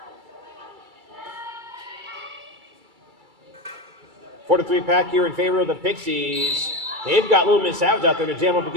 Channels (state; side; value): late; left; 2.3 ms